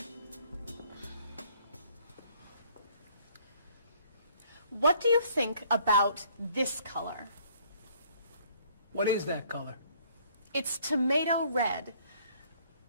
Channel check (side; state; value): both; inverted; correlation -0.61